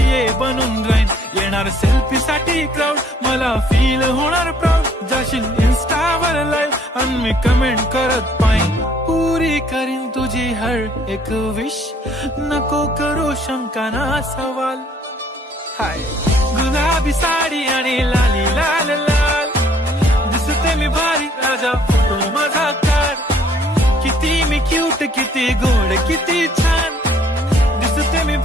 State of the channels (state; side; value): normal; both; correlation 0.61